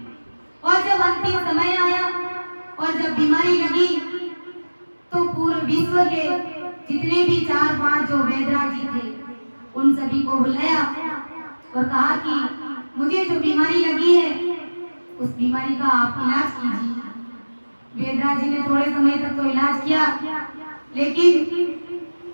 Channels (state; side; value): inverted; both; correlation -1.00